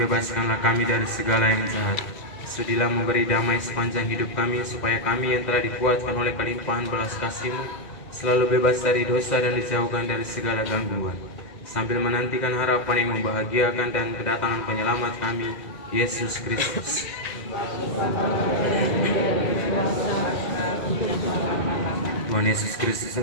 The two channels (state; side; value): late; right; 2.0 ms